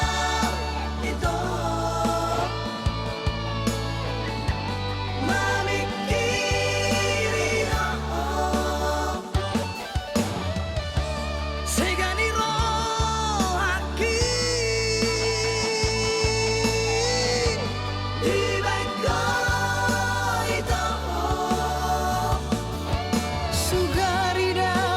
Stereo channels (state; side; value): identical; both; correlation 1.00